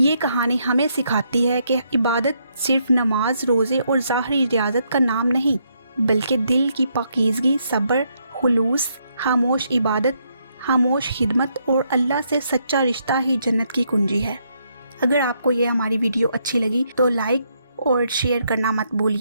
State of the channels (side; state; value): both; inverted; correlation -0.75